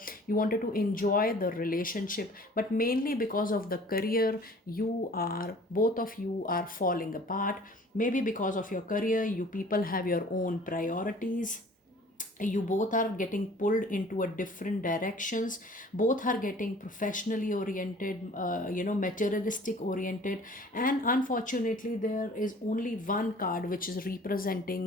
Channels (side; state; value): both; normal; correlation 0.49